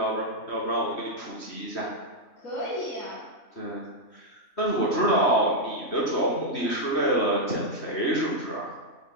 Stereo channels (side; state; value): right; late; 3.1 ms